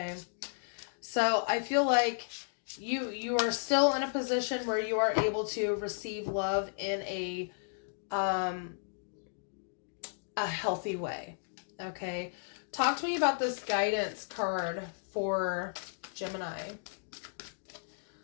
So I feel like you are still in a position where you are able to receive love in a healthy way, okay? Talk to me about this guidance card for Gemini.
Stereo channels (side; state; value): right; silent; digital silence